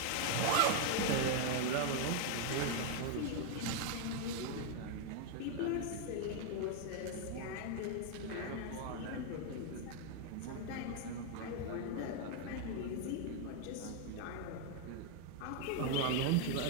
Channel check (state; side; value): different; both; correlation 0.00